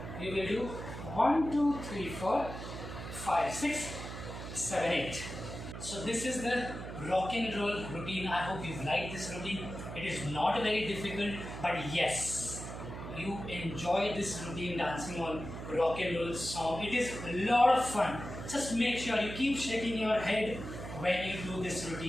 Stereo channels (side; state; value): right; noise; hum, 9 dB below the sound